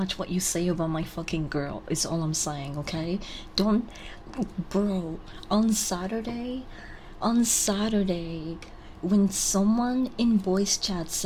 what you say about my fucking girl, is all I'm saying, okay? Don't, bro, on Saturday, when someone in voice chat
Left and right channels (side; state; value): both; identical; correlation 1.00